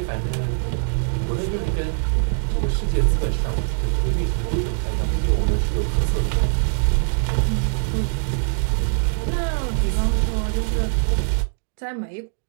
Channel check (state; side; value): silent; left; digital silence